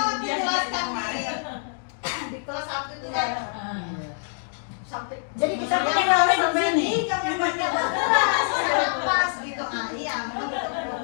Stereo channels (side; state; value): right; silent; digital silence